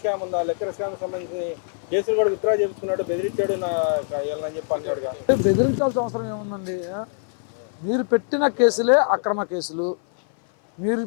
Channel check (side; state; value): right; silent; 56 dB below the other